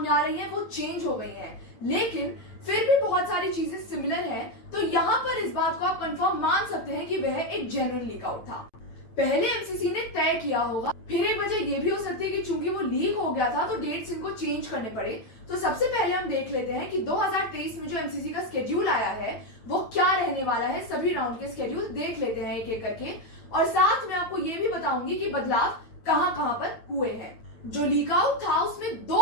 आ रही हैं वो चेंज हो गई हैं। लेकिन फिर भी बहुत सारी चीजें सिमिलर हैं, तो यहाँ पर इस बात को आप कंफर्म मान सकते हैं कि वह एक जेन्युइन लीक आउट था। पहले एमसीसी ने तय किया होगा, फिर एक वजह ये भी हो सकती है कि चूंकि वो लीक हो गया था तो डेट्स इनको चेंज करने पड़े। तो सबसे पहले हम देख लेते हैं कि 2023 में जो एमसीसी का स्केड्यूल आया है वो क्या रहने वाला है। सभी राउंड के स्केड्यूल देख लेते हैं एक एक करके, और साथ में आपको ये भी बताऊंगी कि बदलाव कहां कहां पर हुए हैं। जो लीक आउट था उसमें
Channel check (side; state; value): right; late; 9.0 ms